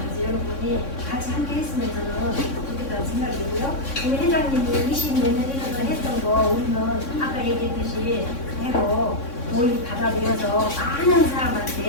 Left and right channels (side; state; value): right; late; 3.6 ms